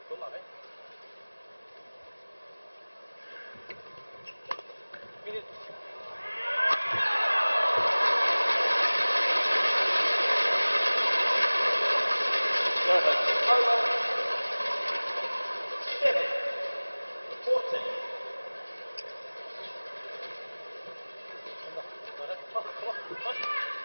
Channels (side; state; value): both; inverted; correlation -1.00